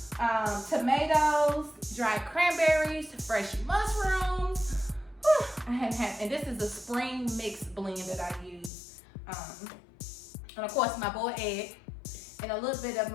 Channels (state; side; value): drops out; right; at 8.7 s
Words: tomatoes, dried cranberries, fresh mushrooms. I hadn't had, and this is a spring mix blend that I use. And of course my boiled egg, and a little bit of